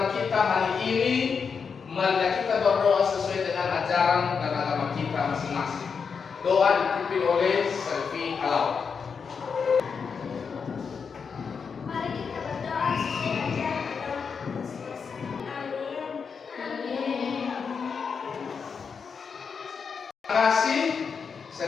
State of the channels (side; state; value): right; quieter; 5.9 dB